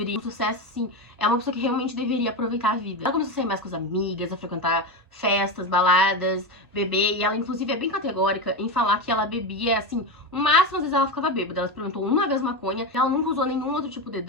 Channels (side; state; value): both; normal; correlation 0.16